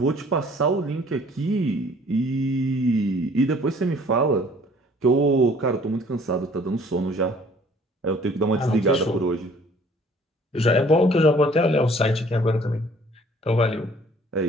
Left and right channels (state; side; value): normal; both; correlation 0.55